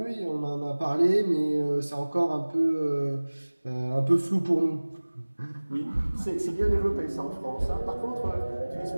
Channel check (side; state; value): both; inverted; correlation -1.00